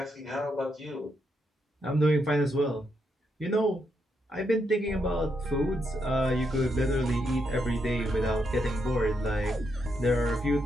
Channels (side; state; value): both; normal; correlation 0.80